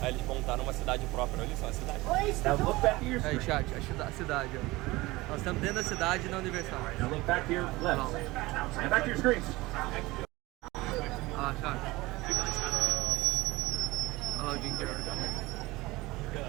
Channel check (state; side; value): quieter; left; 20.6 dB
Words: Aí eles montaram uma cidade própria. Olha só, a cidade. Aí, chat, a cidade, ó. Nós estamos dentro da cidade na Universal. Now look back to your left. And back to your screens. Ah, chat. Olha lá o Jim Carrey.